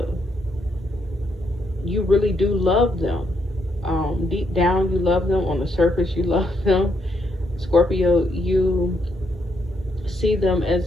You really do love them. Deep down, you love them. On the surface, you love them. Scorpio, you see them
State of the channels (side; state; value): both; normal; correlation 0.76